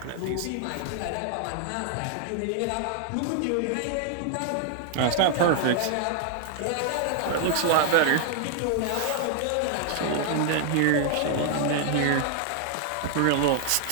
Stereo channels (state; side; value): different; both; correlation 0.00